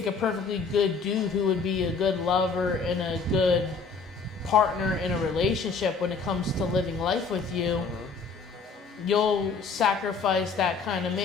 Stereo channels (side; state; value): right; quieter; 4.8 dB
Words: a perfectly good dude who would be a good lover and a good partner in a relationship when it comes to living life with you. You'll sacrifice that kind of